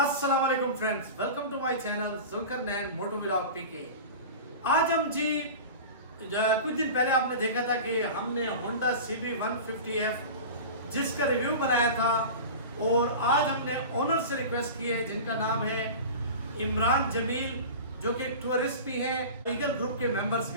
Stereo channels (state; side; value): inverted; both; correlation -0.33